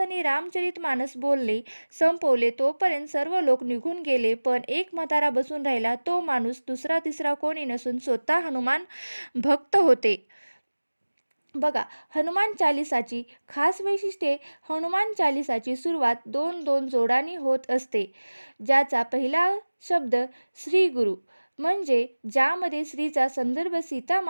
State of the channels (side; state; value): both; inverted; correlation -1.00